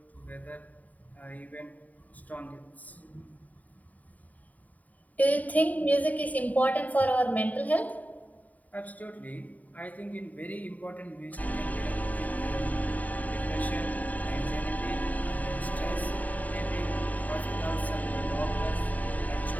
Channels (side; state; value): right; late; 0.074 ms